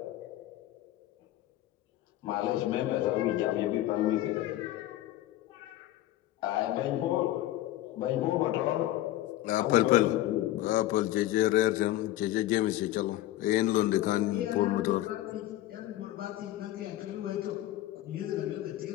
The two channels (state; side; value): quieter; right; 14.6 dB